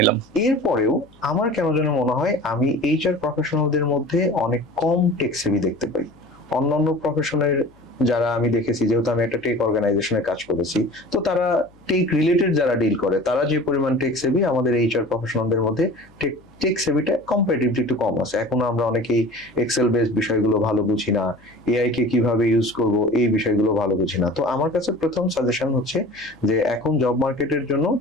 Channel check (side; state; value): left; noise; hum, 29 dB below the sound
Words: এরপরেও আমার কেন যেন মনে হয় আমি এইচআর প্রফেশনালদের মধ্যে অনেক কম টেক সেভি দেখতে পাই। অন্যান্য প্রফেশনের যারা আমি দেখেছি, যেহেতু আমি একটা টেক অর্গানাইজেশনে কাজ করেছি, তো তারা টেক রিলেটেড যারা ডিল করে তারা যে পরিমাণ টেক সেভি, আমাদের এইচআর প্রফেশনালদের মধ্যে টেক সেভিটা কম্পারেটিভলি একটু কম আছে। এখনো আমরা অনেকেই এক্সেল বেসড বিষয়গুলো ভালো বুঝি না, এআই কে কিভাবে ইউজ করব এই বিষয়গুলো ভালো বুঝি না। তো আমার কাছে প্রথম সাজেশন হচ্ছে যে এখন জব মার্কেটের জন্য